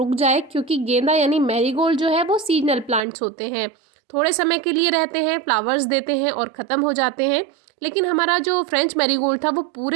जाए, क्योंकि गेंदा यानी मैरीगोल्ड जो है वो सीजनल प्लांट्स होते हैं, थोड़े समय के लिए रहते हैं, फ्लावर्स देते हैं और ख़त्म हो जाते हैं। लेकिन हमारा जो फ्रेंच मैरीगोल्ड था वो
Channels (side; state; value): left; drops out; at 3.0 s